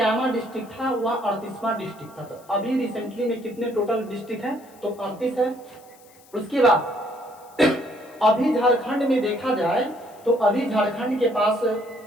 डिस्ट्रिक्ट था, वह 38वां डिस्ट्रिक्ट था। तो अभी रिसेंटली में कितने टोटल डिस्ट्रिक्ट है, तो 38 है। उसके बाद अभी झारखंड में देखा जाए तो अभी झारखंड के पास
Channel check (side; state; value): left; noise; hiss, 27 dB below the sound